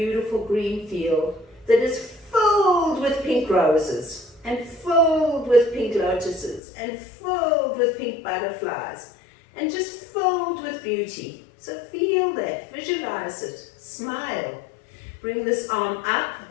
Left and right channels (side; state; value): right; drops out; at 6.6 s